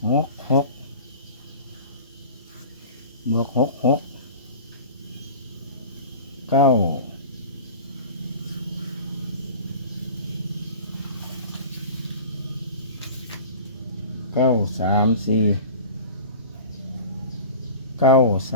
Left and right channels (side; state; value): both; inverted; correlation -0.38